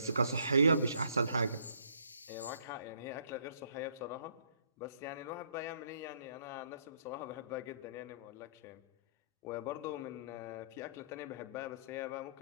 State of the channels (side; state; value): both; inverted; correlation -0.64